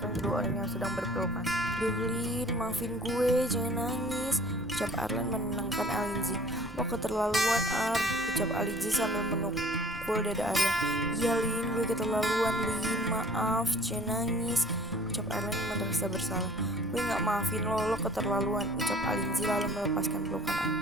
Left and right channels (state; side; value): normal; both; correlation 0.51